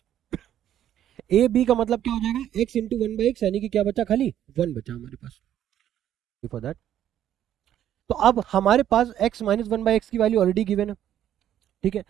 ए बी का मतलब क्या हो जाएगा, x इंटू 1/x, यानी कि क्या बचा, खाली 1 बचा हमारे पास फॉर दैट। तो अब हमारे पास x माइनस 1/x की वैल्यू ऑलरेडी गिवन है, ठीक है।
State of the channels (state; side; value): quieter; left; 11.0 dB